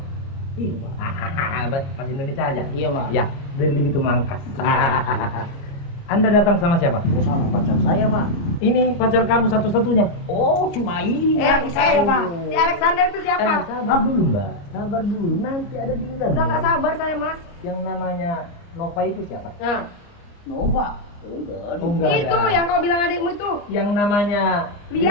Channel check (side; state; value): right; late; 29 ms